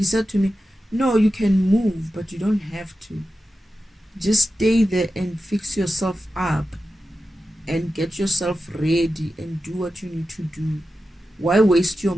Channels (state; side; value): normal; both; correlation 0.92